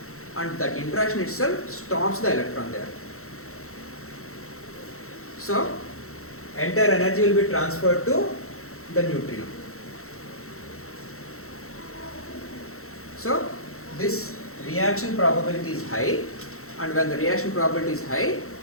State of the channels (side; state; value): right; late; 0.63 ms